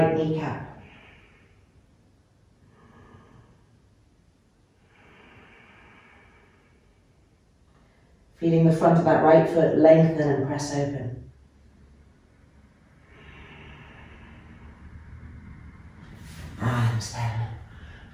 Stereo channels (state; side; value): identical; both; correlation 1.00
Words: kneecap. Feeling the front of that right foot lengthen and press open.